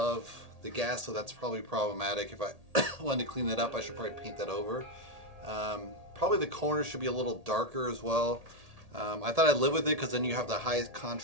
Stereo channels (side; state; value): left; late; 1.8 ms